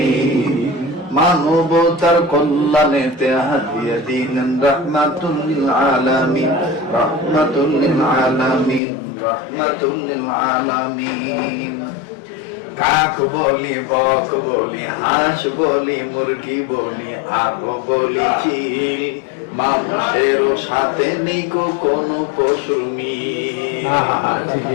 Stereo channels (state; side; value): drops out; right; at 8.8 s